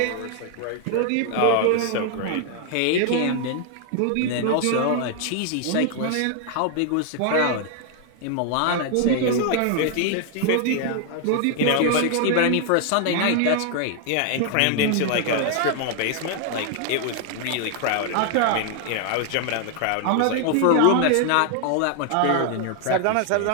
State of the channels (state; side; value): different; both; correlation 0.00